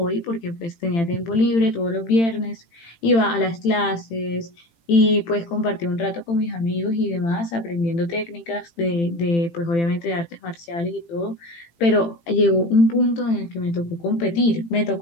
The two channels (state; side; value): late; right; 18 ms